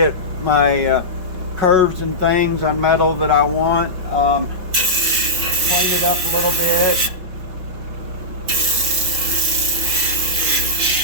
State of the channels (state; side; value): late; left; 5.6 ms